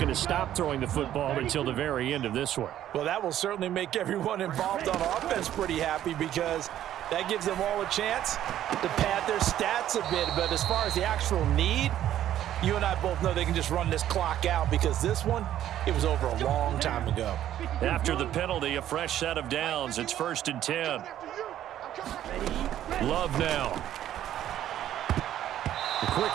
to stop throwing the football until the very end of this one. Well, that will certainly make everyone involved on offense pretty happy because that gives them all a chance to pad their stats a bit. But as far as the actual need, you and I both know they can just run this clock out because this one, it was over a long time ago. After the penalty, a fresh set of downs. It's 1st and 10. Love now. The quick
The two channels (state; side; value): quieter; left; 11.8 dB